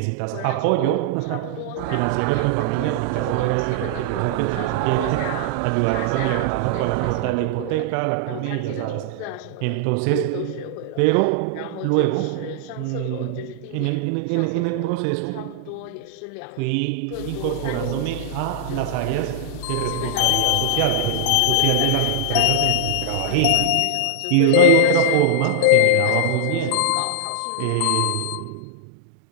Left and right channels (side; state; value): both; different; correlation -0.01